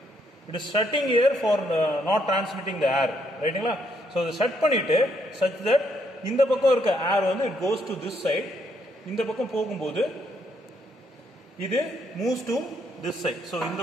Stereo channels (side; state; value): both; normal; correlation 0.73